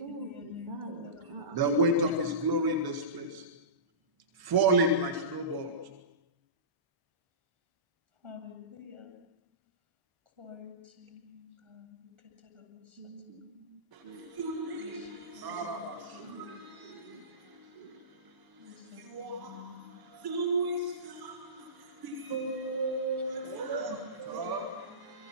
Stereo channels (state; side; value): late; left; 1.0 ms